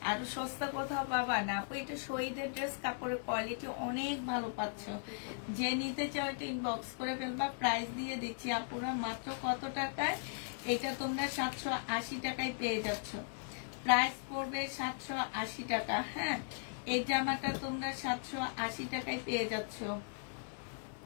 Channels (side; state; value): right; silent; digital silence